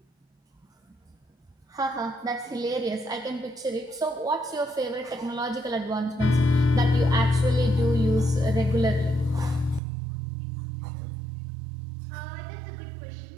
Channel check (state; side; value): drops out; left; at 9.8 s